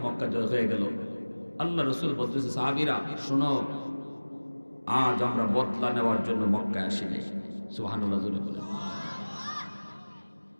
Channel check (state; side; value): inverted; both; correlation -1.00